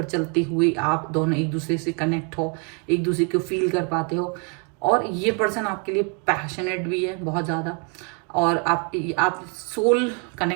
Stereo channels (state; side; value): quieter; left; 35.4 dB